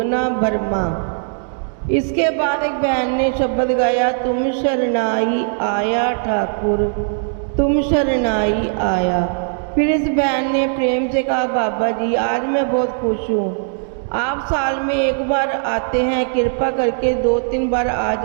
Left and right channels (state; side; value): silent; left; digital silence